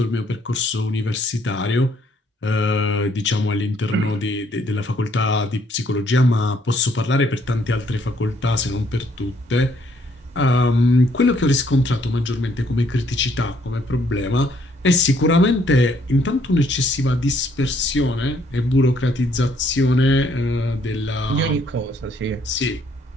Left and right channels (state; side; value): normal; both; correlation 0.67